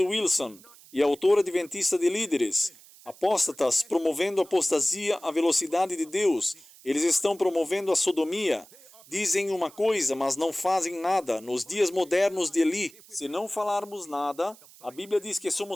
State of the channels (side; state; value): right; noise; hiss, 23 dB below the sound